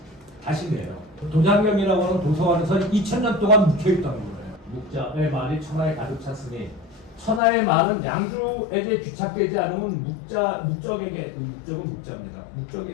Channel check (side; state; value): right; drops out; at 7.4 s